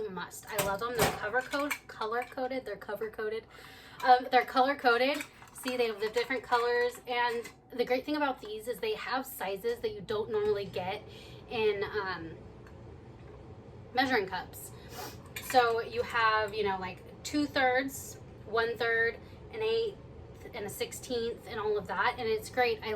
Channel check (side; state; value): both; identical; correlation 1.00